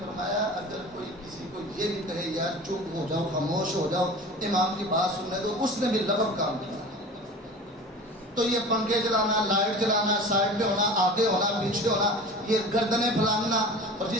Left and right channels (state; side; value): normal; both; correlation 0.38